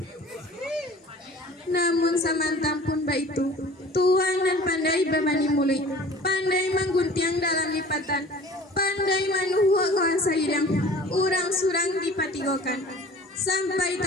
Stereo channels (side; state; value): both; normal; correlation 0.45